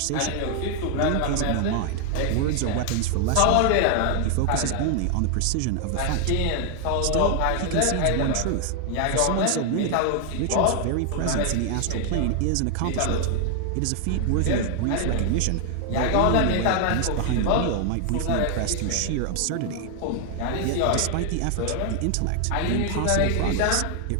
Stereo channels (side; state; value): both; different; correlation 0.00